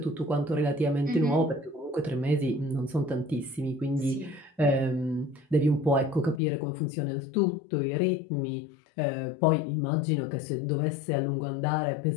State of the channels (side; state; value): right; drops out; at 6.4 s